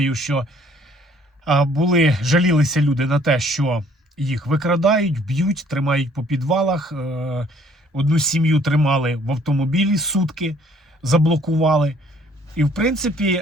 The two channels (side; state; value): both; normal; correlation 0.60